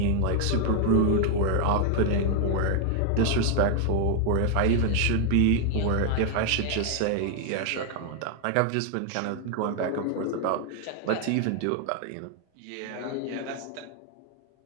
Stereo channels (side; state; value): both; different; correlation 0.00